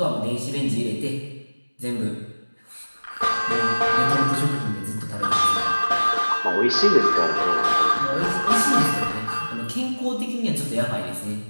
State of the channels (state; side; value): inverted; both; correlation -1.00